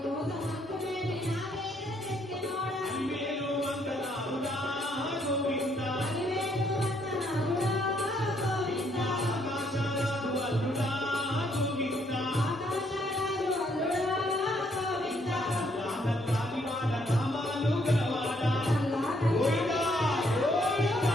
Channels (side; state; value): both; normal; correlation 0.70